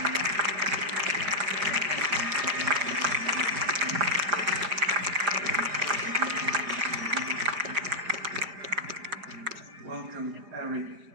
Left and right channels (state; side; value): late; left; 4.9 ms